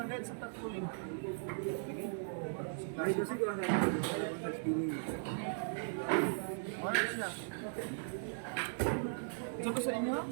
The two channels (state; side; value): silent; left; digital silence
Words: sa tagpuling. Ay kasi ko lang sa spinning. Ano siya? Ito ko sa inyo?